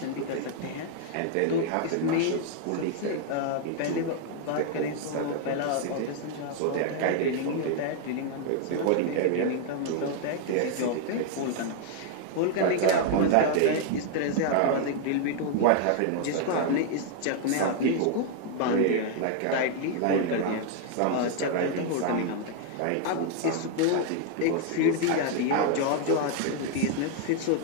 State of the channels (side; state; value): both; different; correlation 0.00